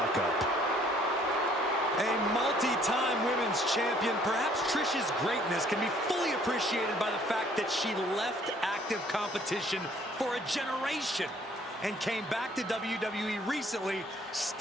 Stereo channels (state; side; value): normal; both; correlation 0.60